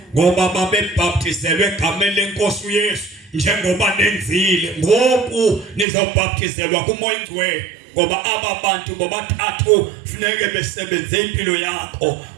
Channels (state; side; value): drops out; left; at 5.9 s